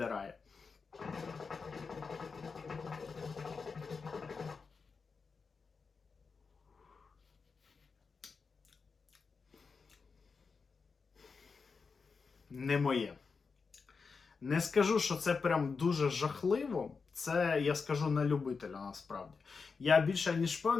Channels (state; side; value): quieter; right; 5.0 dB